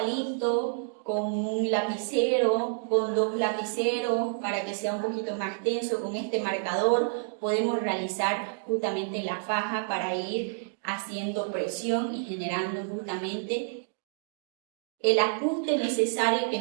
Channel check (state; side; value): silent; left; digital silence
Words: con un lapicero, con 2 lapiceros, para que sea un poquito más tenso. Con este marcador podemos realizar justamente la faja para ir haciendo presión y generando justamente el ajuste necesario que